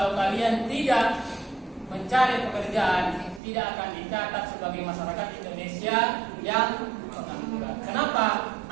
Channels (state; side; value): drops out; left; at 3.4 s